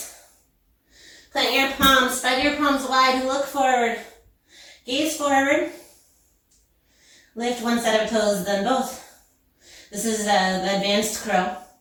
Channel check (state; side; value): identical; both; correlation 1.00